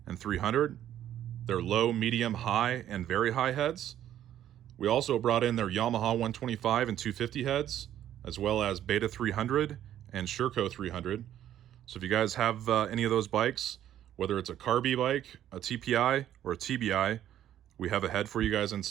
and 300. Their low, medium, high, and very high heads. We also brought in their Yamaha 125 and 250 heads, as well as Beta 300 and Sherco 300. So if you guys have any of those bikes, whether it's a Carby bike, a TPI, or a TBI, we have a head for you guys in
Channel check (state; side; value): quieter; left; 11.4 dB